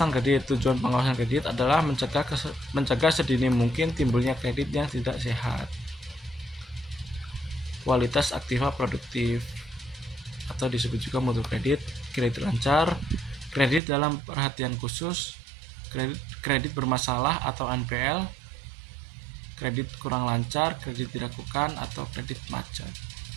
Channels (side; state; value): left; drops out; at 13.8 s